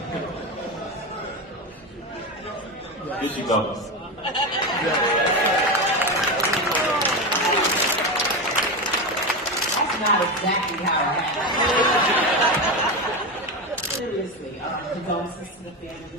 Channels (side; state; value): both; normal; correlation 0.17